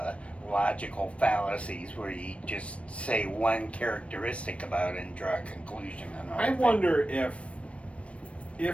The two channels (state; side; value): late; right; 0.062 ms